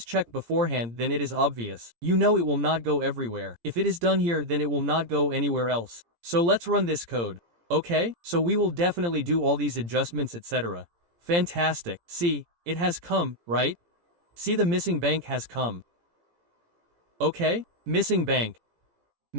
checked beforehand, then it is obvious. You know it will not go everywhere. If it is done here, then it will not go anywhere else. So let's run this code. Okay, so we will definitely do all these adjustments, etc. Fantastic. See, it has come, right? See, the missing bank has come. Okay, missing bank.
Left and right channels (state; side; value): late; left; 17 ms